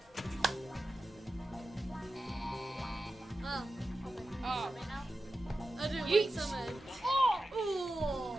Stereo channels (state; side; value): normal; both; correlation 0.92